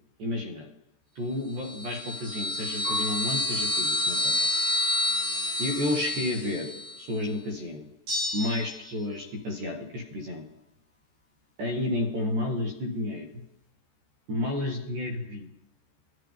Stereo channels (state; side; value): late; left; 14 ms